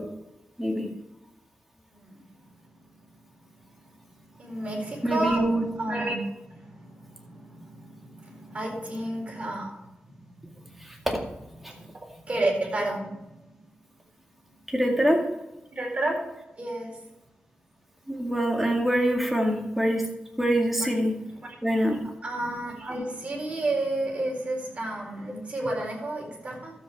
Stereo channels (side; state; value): both; normal; correlation 0.89